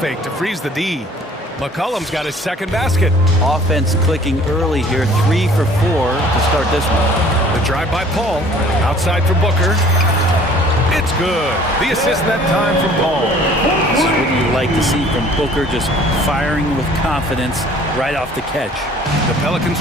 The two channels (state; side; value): normal; both; correlation 0.53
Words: to freeze the D. McCollum's got his second basket. Offense clicking early here, 3 for 4 to start this one. The drive by Paul. Outside for Booker. It's good. The assist that time from Paul. This is what you like to see from Booker, just firing with confidence right off the catch. The Pelicans